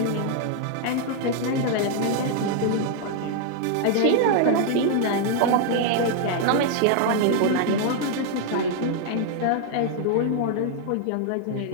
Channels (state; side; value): different; both; correlation 0.00